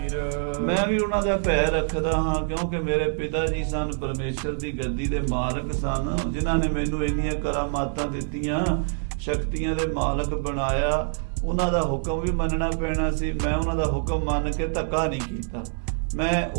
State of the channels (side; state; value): left; silent; 61 dB below the other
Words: ਮੈਂ ਵੀ ਉਹਨਾਂ ਦਾ ਭੈ ਰੱਖਦਾ ਹਾਂ, ਕਿਉਂਕਿ ਮੇਰੇ ਪਿਤਾ ਜੀ ਸਨ, ਪਰਮੇਸ਼ਰ ਦੀ ਗੱਦੀ ਦੇ ਮਾਲਕ ਸਨ, ਜਿਨ੍ਹਾਂ ਨੇ ਮੈਨੂੰ ਇੰਨੀਆਂ ਕਰਾਮਾਤਾਂ ਦਿੱਤੀਆਂ, ਸ਼ਕਤੀਆਂ ਦੇ ਮਾਲਕ ਬਣਾਇਆ। ਉਹਨਾਂ ਦਾ ਹੁਕਮ ਵੀ ਮੰਨਣਾ ਪੈਣਾ ਸੀ। ਮੈਂ ਉਹਨਾਂ ਦਾ ਹੁਕਮ ਮੰਨ ਕੇ ਧੱਕਾ ਨਹੀਂ ਕੀਤਾ, ਮੈਂ